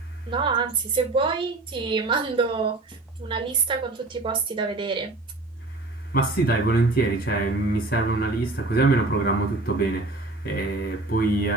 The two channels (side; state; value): left; quieter; 3.1 dB